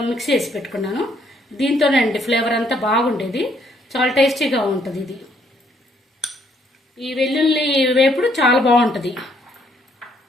మిక్స్ చేసి పెట్టుకున్నాను. దీంతోనే అండి ఫ్లేవర్ అంతా బాగుండేది, చాలా టేస్టీగా ఉంటుంది. ఇది ఈ వెల్లుల్లి వేపుడు చాలా బాగుంటుంది.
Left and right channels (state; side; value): normal; both; correlation 0.69